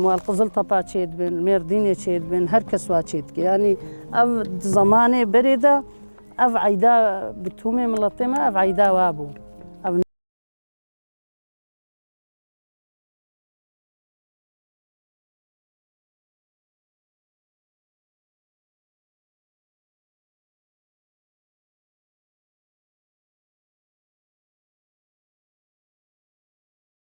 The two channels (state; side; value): inverted; both; correlation -1.00